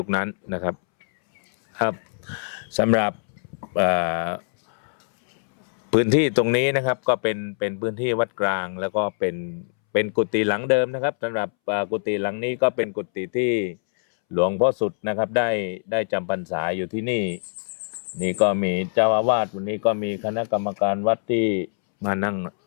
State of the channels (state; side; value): silent; right; 63 dB below the other